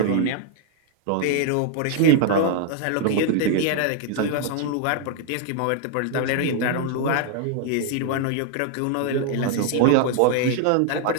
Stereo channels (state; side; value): different; both; correlation 0.00